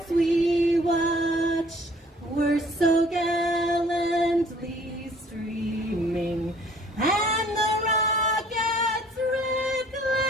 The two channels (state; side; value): normal; both; correlation 0.56